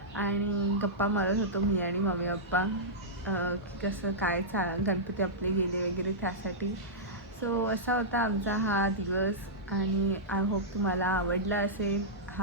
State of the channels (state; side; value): normal; both; correlation -0.12